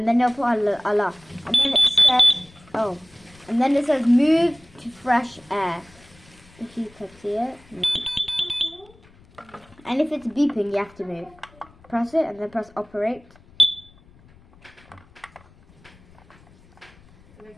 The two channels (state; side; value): noise; left; rumble, 27 dB below the sound